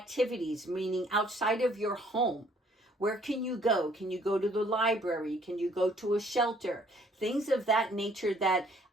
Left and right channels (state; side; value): normal; both; correlation 0.62